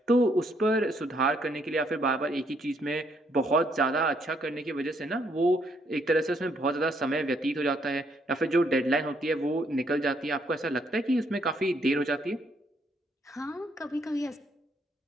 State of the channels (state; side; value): normal; both; correlation 0.71